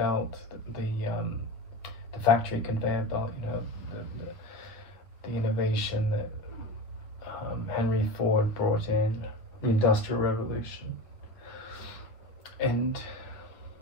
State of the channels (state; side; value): late; right; 8.9 ms